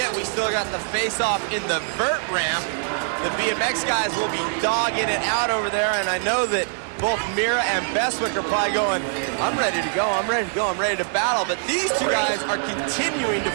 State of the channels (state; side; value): silent; left; digital silence